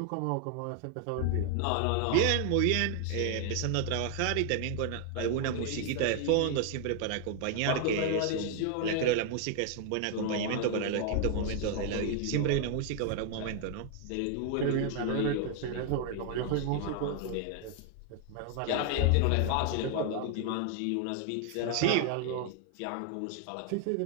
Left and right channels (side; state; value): both; different; correlation 0.00